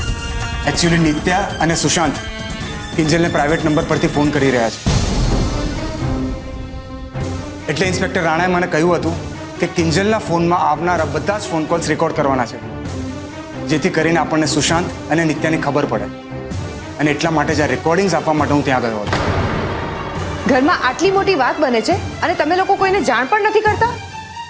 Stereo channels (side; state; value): both; identical; correlation 1.00